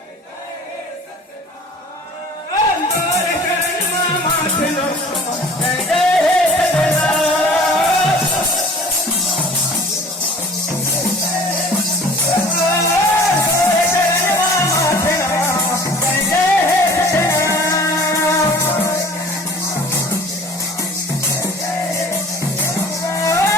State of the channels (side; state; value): both; normal; correlation 0.47